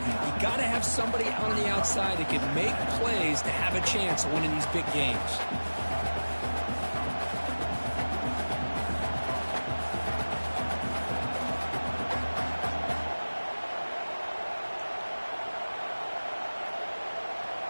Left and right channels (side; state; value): both; inverted; correlation -1.00